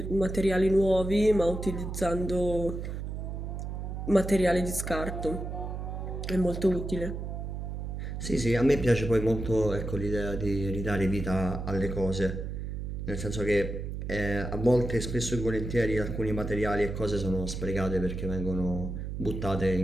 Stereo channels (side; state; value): right; noise; hum, 5 dB below the sound